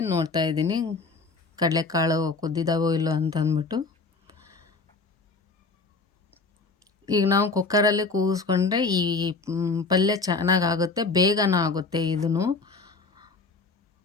ನೋಡ್ತಾ ಇದ್ದೀನಿ ಕಡಲೆಕಾಳು ಕುದ್ದಿದ್ದಾವೋ ಇಲ್ಲೋ ಅಂತ ಅಂದ್ಬಿಟ್ಟು. ಈಗ ನಾವು ಕುಕ್ಕರಲ್ಲಿ ಕೂಗಿಸ್ಕೊಂಡ್ರೆ ಈ ಪಲ್ಯ ಚೆನ್ನಾಗಾಗುತ್ತೆ, ಬೇಗನ ಆಗುತ್ತೆ. ಇದನ್ನು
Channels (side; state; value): right; quieter; 4.0 dB